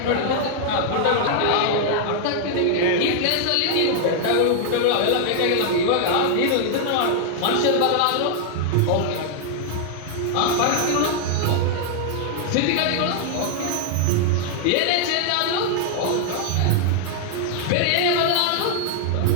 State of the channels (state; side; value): different; both; correlation -0.01